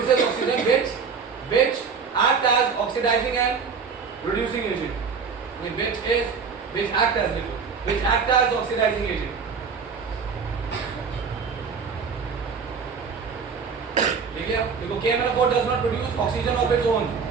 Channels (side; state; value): left; quieter; 5.7 dB